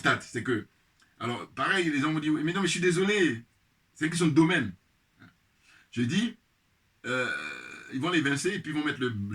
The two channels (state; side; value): identical; both; correlation 1.00